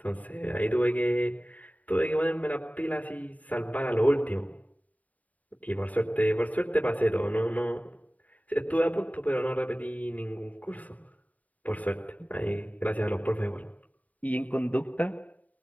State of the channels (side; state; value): right; late; 0.072 ms